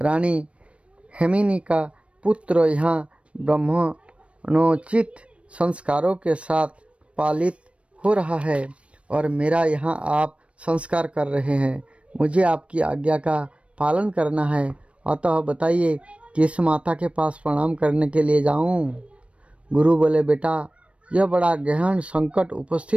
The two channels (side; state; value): left; late; 0.061 ms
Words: हेमिनी का पुत्र यहाँ ब्राह्मणोचित संस्कारों के साथ पालित हो रहा है और मेरा यहाँ आप संस्कार कर रहे हैं। मुझे आपकी आज्ञा का पालन करना है, अतः बताइए किस माता के पास प्रणाम करने के लिए जाऊँ। गुरु बोले, बेटा यह बड़ा गहन संकट